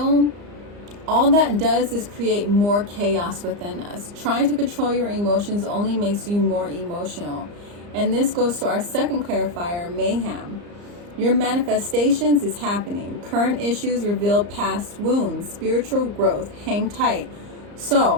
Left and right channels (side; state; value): left; late; 34 ms